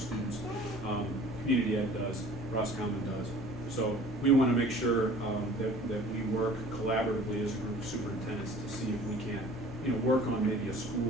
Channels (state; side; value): normal; both; correlation 0.48